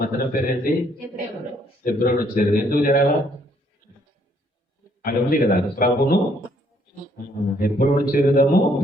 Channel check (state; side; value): normal; both; correlation 0.67